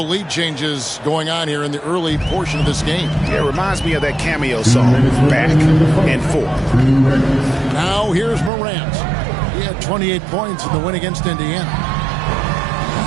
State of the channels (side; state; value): left; drops out; at 8.5 s